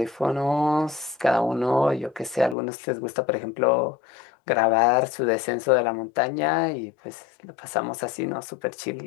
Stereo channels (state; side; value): drops out; right; at 2.6 s